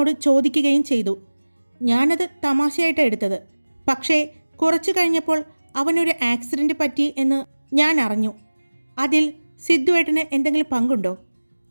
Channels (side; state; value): both; inverted; correlation -1.00